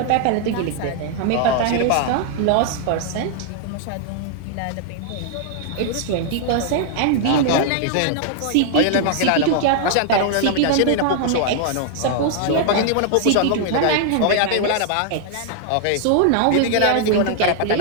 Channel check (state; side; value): different; both; correlation -0.01